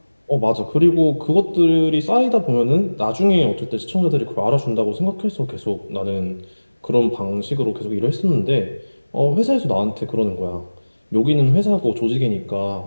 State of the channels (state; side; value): inverted; both; correlation -1.00